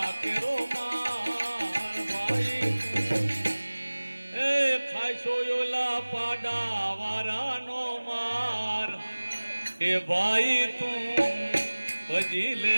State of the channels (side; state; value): both; inverted; correlation -1.00